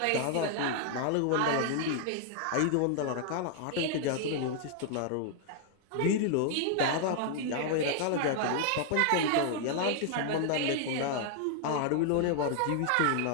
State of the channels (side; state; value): both; different; correlation 0.00